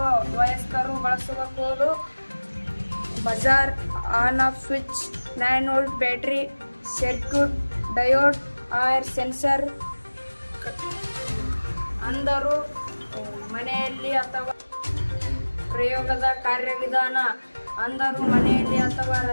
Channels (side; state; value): both; inverted; correlation -1.00